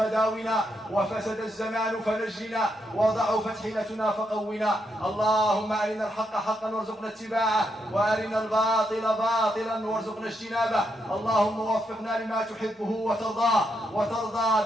وفسد الزمان فنجنا وضعفت حيلتنا فقونا اللهم أرنا الحق حقا وارزقنا اتباعه وأرنا الباطل باطلا وارزقنا اجتنابه اللهم وفقنا لما تحبه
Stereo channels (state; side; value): normal; both; correlation 0.80